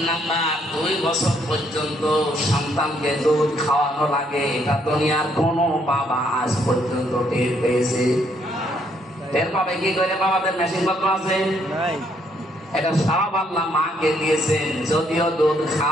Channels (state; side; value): normal; both; correlation 0.70